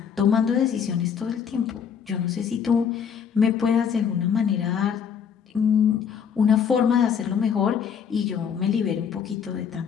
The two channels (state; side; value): quieter; right; 7.4 dB